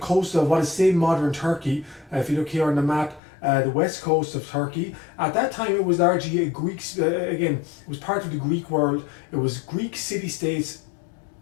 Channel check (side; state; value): right; drops out; at 3.2 s